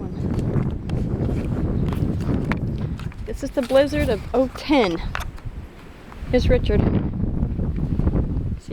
This is the blizzard of 2010. Here's Richard.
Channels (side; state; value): both; identical; correlation 1.00